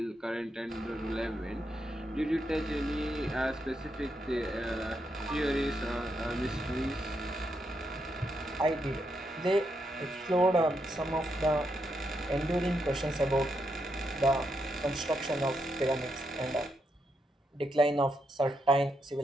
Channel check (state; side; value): normal; both; correlation 0.81